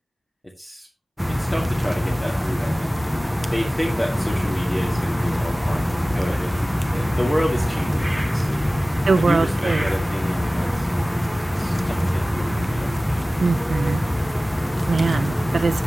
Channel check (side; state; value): both; normal; correlation 0.97